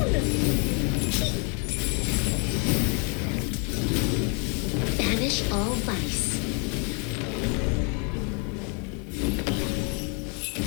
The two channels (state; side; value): quieter; right; 36.0 dB